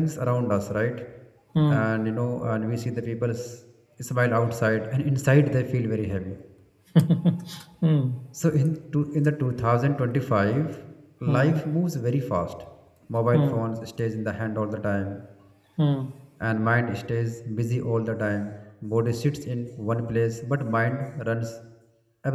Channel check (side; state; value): both; identical; correlation 1.00